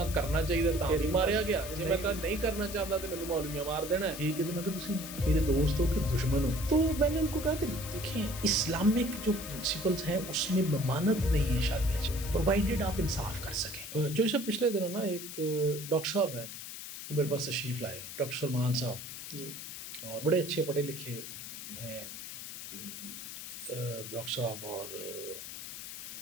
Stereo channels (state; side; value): noise; left; hiss, 9 dB below the sound